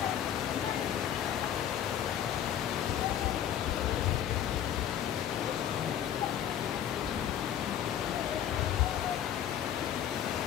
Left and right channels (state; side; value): quieter; right; 10.1 dB